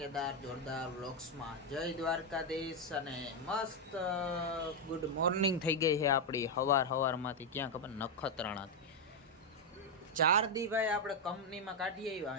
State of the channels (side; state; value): both; normal; correlation 0.02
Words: જોરદાર વ્લોગ્સમાં. જય દ્વારકાધીશ અને મસ્ત ગુડ મોર્નિંગ થઈ ગઈ છે આપણી હવારમાંથી. ક્યાં ખબર? નખત્રાણાથી. 4 દી ભાઈ આપણે કંપનીમાં કાઢી આવ્યા